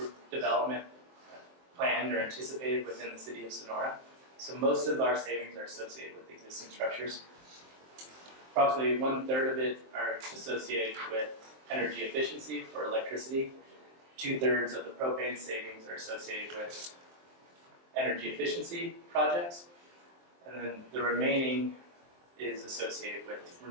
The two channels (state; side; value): late; left; 23 ms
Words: development planned or anticipated within the city of Sonora. So most of our savings are associated with existing structures. Approximately 1/3 of it are associated with energy efficiency for electricity. 2/3 of the propane savings are associated with energy efficiency projects. And then the remaining is associated with